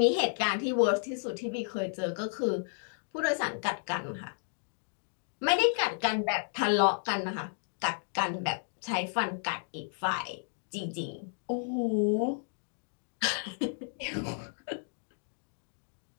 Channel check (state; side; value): silent; right; digital silence